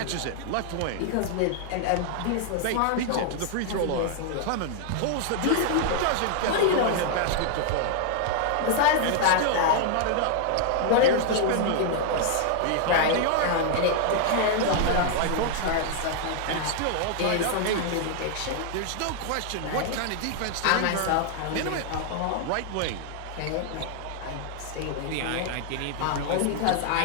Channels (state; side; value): different; both; correlation 0.00